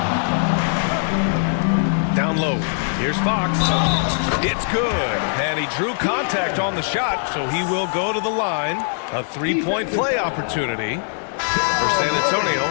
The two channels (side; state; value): right; silent; 65 dB below the other